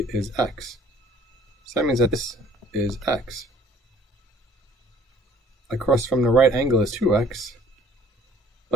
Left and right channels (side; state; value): both; normal; correlation 0.56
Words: is x. So that means that this is x. Across from the right angle is 2x,